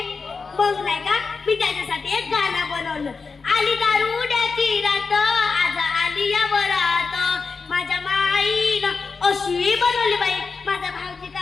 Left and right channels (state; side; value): quieter; right; 4.8 dB